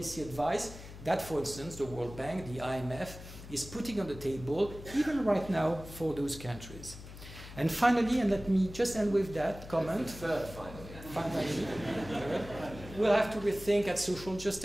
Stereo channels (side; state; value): left; noise; hum, 14 dB below the sound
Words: advice that, for instance, the World Bank, the IMF, is putting on the table, even right now, for those countries. And finally, and let me just end with that comment. Finally, we'll have to rethink at social